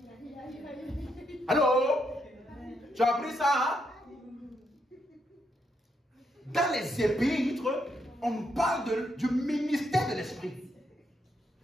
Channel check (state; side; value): normal; both; correlation 0.78